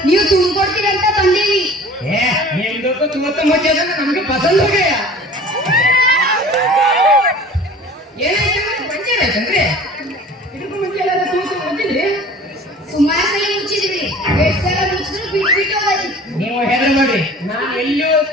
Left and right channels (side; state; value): both; normal; correlation 0.44